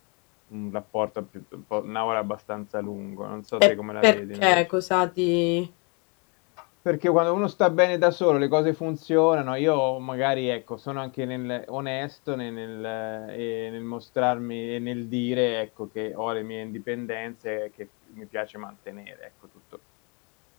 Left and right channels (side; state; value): right; quieter; 33.8 dB